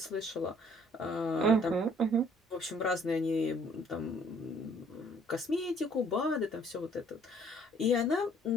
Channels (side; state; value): both; normal; correlation 0.60